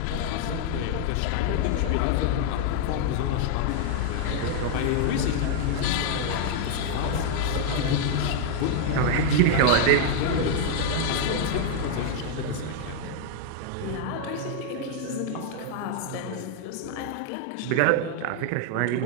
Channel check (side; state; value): both; different; correlation 0.00